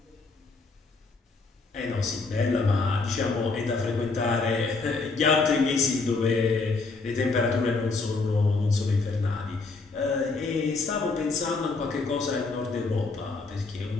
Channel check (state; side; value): quieter; right; 3.9 dB